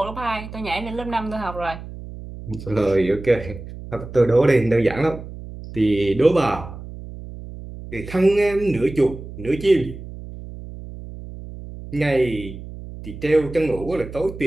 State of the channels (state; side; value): noise; right; hum, 13 dB below the sound